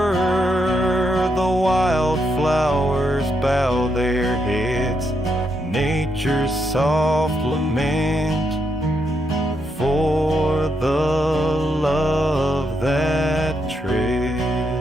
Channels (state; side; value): normal; both; correlation 0.80